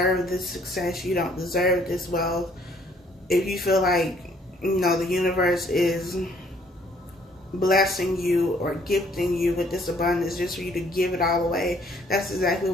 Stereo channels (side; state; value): both; normal; correlation 0.63